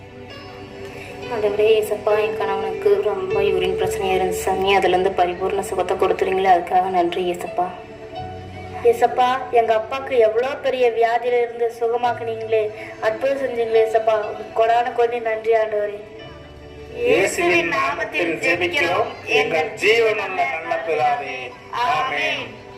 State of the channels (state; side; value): identical; both; correlation 1.00